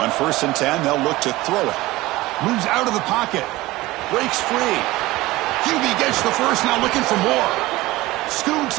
1st and 10, they'll look to throw it. Moves out of the pocket. Breaks free. QB gets the first, now looking for more.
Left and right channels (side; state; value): left; quieter; 18.9 dB